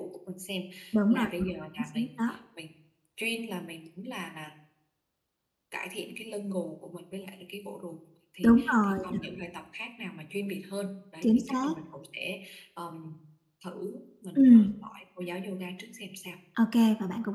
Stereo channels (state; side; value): identical; both; correlation 1.00